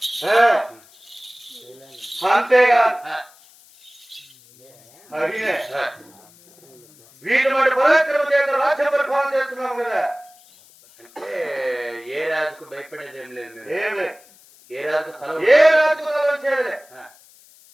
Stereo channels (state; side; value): noise; left; hiss, 27 dB below the sound